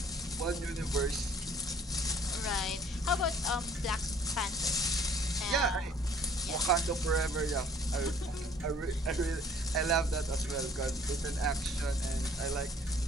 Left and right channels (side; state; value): both; normal; correlation 0.56